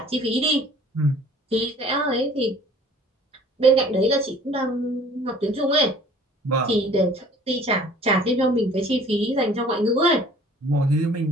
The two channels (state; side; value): normal; both; correlation 0.51